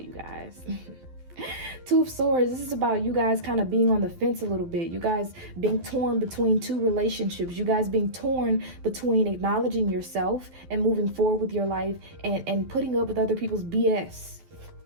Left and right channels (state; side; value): late; left; 12 ms